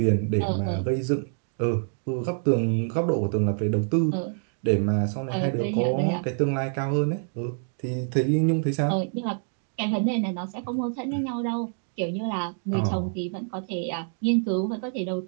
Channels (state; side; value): silent; left; 61 dB below the other